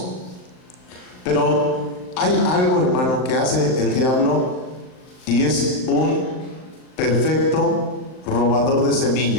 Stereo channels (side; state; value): right; late; 39 ms